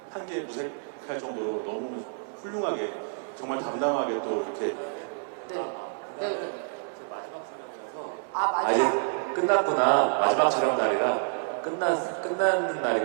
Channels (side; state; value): left; silent; 59 dB below the other